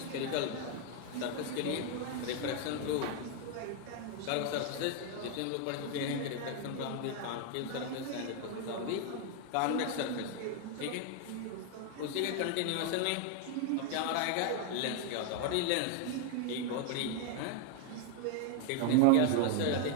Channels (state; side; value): different; both; correlation 0.01